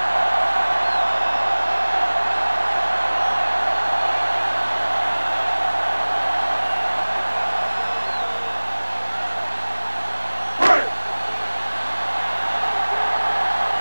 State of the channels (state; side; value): inverted; both; correlation -1.00